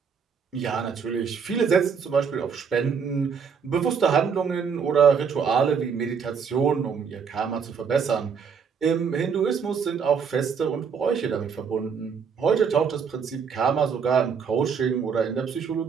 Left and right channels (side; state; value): left; quieter; 6.4 dB